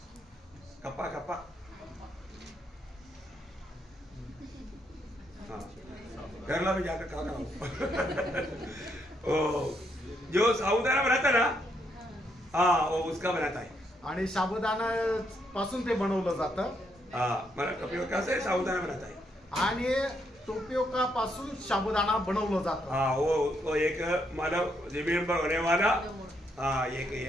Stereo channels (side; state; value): both; normal; correlation 0.76